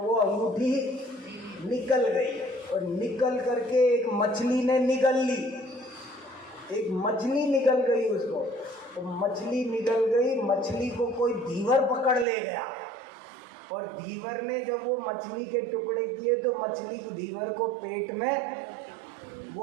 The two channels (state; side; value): drops out; left; at 12.2 s